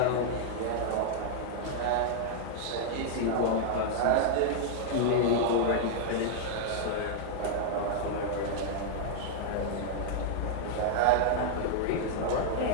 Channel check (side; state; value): both; different; correlation -0.01